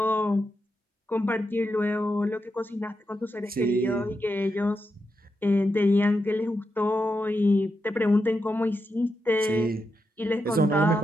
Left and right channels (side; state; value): both; normal; correlation 0.86